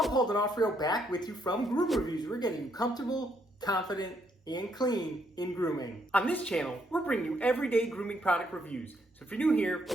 Paul D'Onofrio back with you from Groom Reviews. We're getting you comfortable, confident, and clean in grooming. On this channel, we're bringing you everyday grooming product reviews. So if you're new here,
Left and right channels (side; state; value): both; normal; correlation 0.73